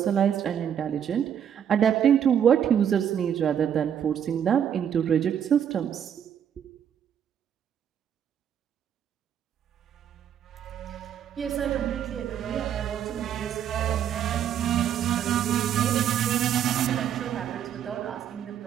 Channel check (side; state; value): left; quieter; 9.1 dB